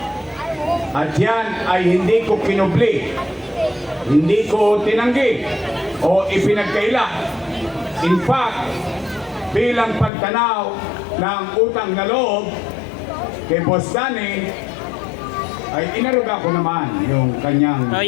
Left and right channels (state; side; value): drops out; right; at 10.1 s